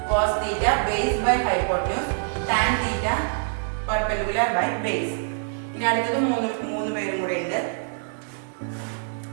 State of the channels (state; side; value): silent; left; 60 dB below the other